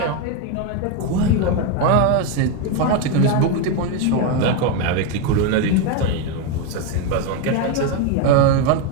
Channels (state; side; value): different; both; correlation 0.02